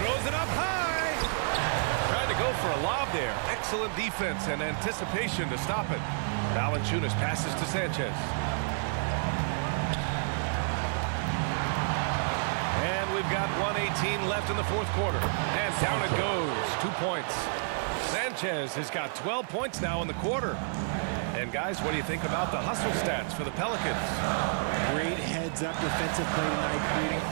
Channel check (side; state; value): left; silent; 58 dB below the other